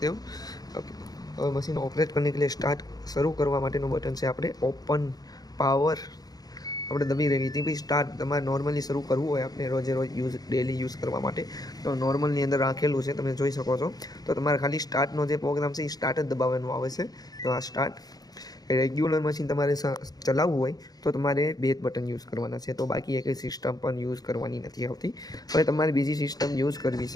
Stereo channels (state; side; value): late; right; 0.19 ms